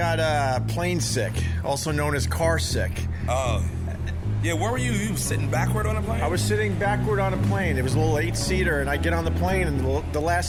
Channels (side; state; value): both; identical; correlation 1.00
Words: plane sick, also known as car sick. Oh. Yeah, where were you? You sitting backward on a plane? I was sitting backward on a plane. It was a little 8-seater, and I get on the plane, and the